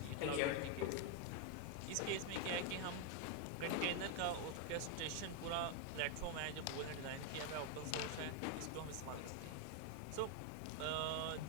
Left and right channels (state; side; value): different; both; correlation 0.01